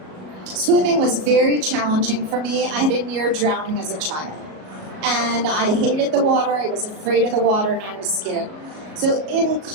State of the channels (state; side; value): late; left; 37 ms